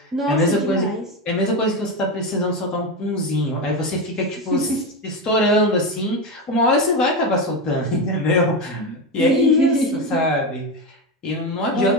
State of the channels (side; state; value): both; normal; correlation 0.15